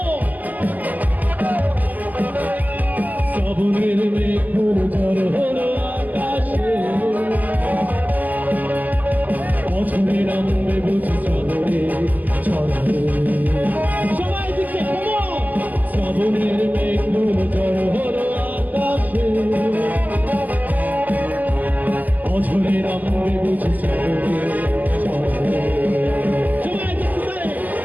শ্রাবণের মেঘগুলো ঝড় হলো আকাশে, বছরে নামবে বুঝি শ্রাবণে ঝড়ে। সবাই দিকে come on! শ্রাবণের মেঘগুলো ঝড় হলো আকাশে, বছরে নামবে বুঝি শ্রাবণে ঝড়ে।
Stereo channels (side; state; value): left; late; 0.081 ms